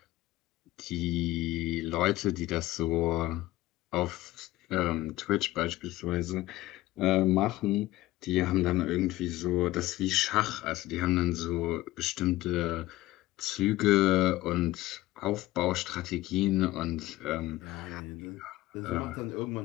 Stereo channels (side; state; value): right; quieter; 17.1 dB